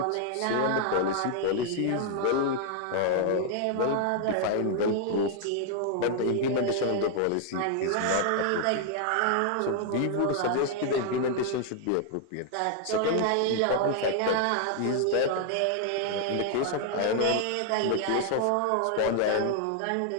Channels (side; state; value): both; different; correlation 0.00